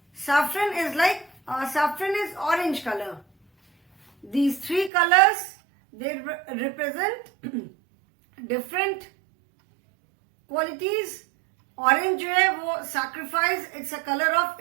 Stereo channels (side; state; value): left; drops out; at 4.9 s